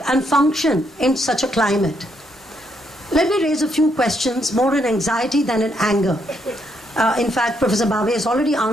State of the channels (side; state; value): both; normal; correlation 0.75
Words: and function in such a climate? Let me raise a few questions, more in anxiety than in anger. In fact, Professor Bave has already